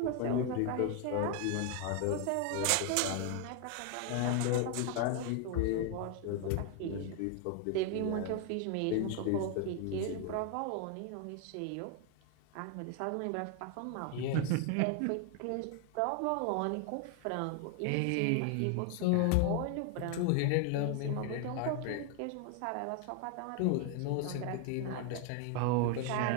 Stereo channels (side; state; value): both; different; correlation 0.01